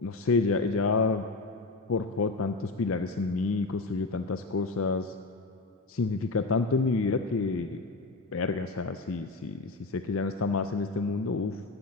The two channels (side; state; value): right; quieter; 3.5 dB